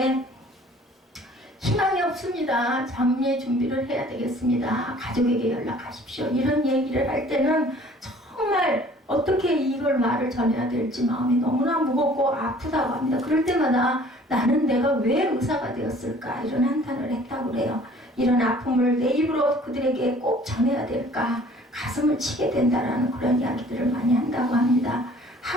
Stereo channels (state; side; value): normal; both; correlation 0.53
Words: 희망이 없습니다. 장례 준비를 해야 되겠습니다. 가족에게 연락하십시오. 이런 얘기를 할 때는 정말 어떻게 이걸 말을 전해야 될지 마음이 너무나 무겁고 아프다고 합니다. 그럴 때마다 나는 내가 왜 의사가 되었을까 이런 한탄을 했다고 그래요. 이런 아픔을 내 입으로 그들에게 꼭 전해야 될까 가슴을 치게 된다라는 그런 이야기들을 많이 한다고 합니다.